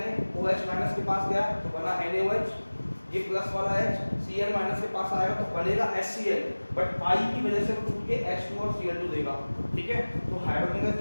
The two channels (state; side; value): inverted; both; correlation -1.00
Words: माइनस के पास गया तो बना NaOH, ये प्लस वाला H Cl माइनस के पास आएगा तो बनेगा HCl, बट I की वजह से वो टूट के H2 और Cl2 देगा, ठीक है। तो हाइड्रोजन गैस